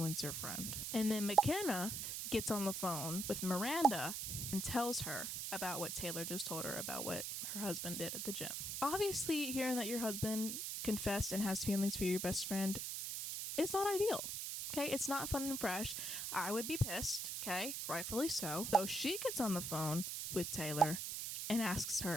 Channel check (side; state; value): right; noise; hiss, 3 dB below the sound